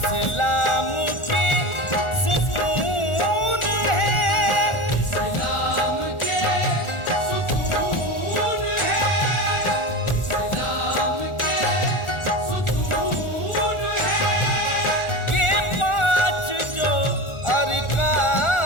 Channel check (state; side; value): late; right; 1.4 ms